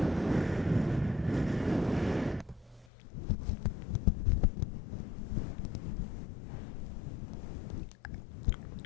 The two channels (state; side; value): drops out; right; at 2.9 s